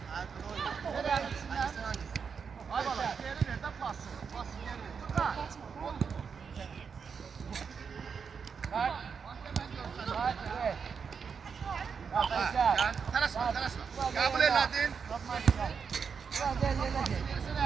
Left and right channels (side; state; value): left; quieter; 6.1 dB